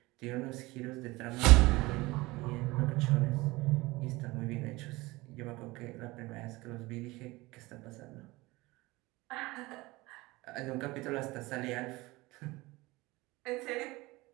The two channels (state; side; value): quieter; left; 21.3 dB